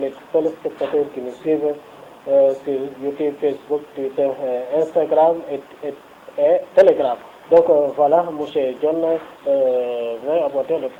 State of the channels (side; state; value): both; identical; correlation 1.00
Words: téléspectateurs qui nous suivent sur YouTube, Facebook, Twitter, Instagram et Telegram. Donc voilà, M. Dione vient aborder le